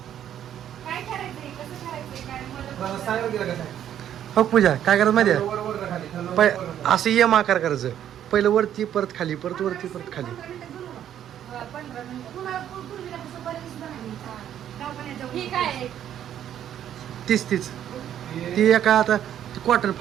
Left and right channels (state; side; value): quieter; left; 10.4 dB